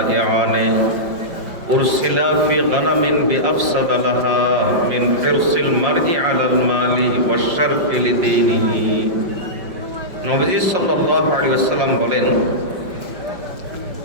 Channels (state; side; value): late; left; 5.4 ms